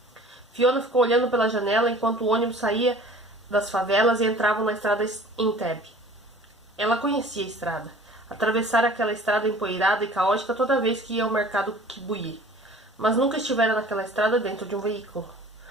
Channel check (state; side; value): normal; both; correlation 0.47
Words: Fiona ficou olhando pela janela enquanto o ônibus saía das favelas e entrava na estrada Entebbe. Ela conhecia a estrada. Atravessara aquela estrada empoeirada e caótica toda vez que ia ao mercado Kibuye, mas nunca estivera naquela estrada dentro de um veículo.